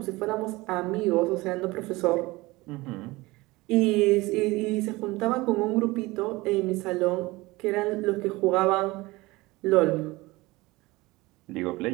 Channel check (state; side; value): quieter; left; 21.2 dB